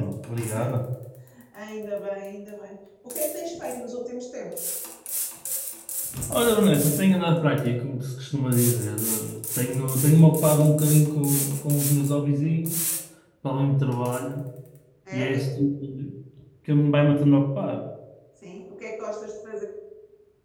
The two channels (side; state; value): both; identical; correlation 1.00